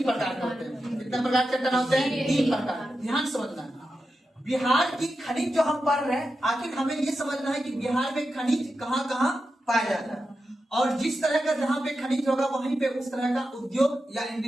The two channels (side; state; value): both; normal; correlation 0.90